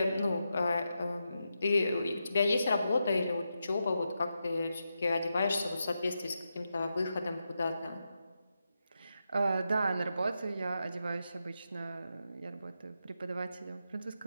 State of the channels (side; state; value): both; inverted; correlation -0.87